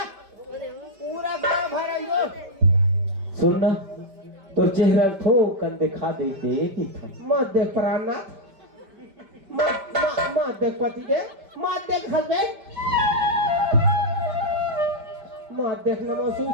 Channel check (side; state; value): left; late; 5.1 ms